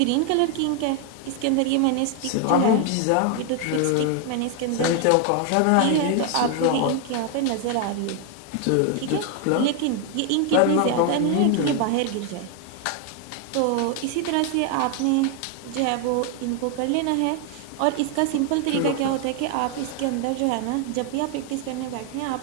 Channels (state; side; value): different; both; correlation 0.01